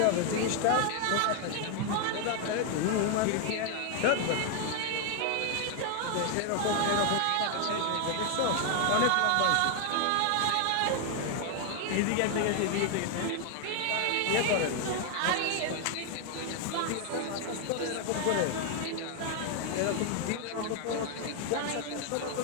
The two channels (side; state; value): both; different; correlation 0.01